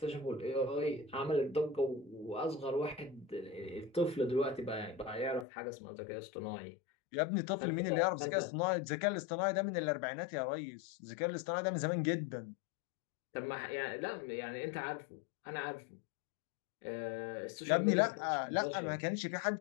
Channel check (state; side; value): drops out; right; at 5.5 s